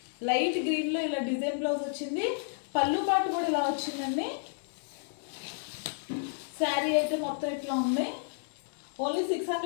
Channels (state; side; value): silent; right; digital silence